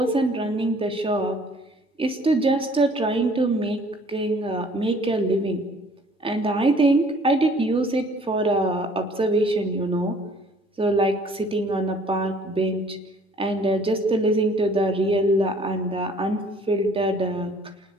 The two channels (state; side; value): normal; both; correlation 0.56